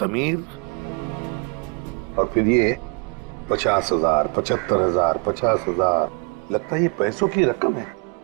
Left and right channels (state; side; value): quieter; left; 34.2 dB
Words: और फिर ये 50,000, 75,000, 50,000, लगता है ये पैसों की रकम है।